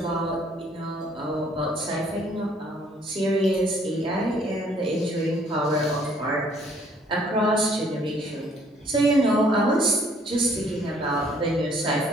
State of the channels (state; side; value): normal; both; correlation 0.61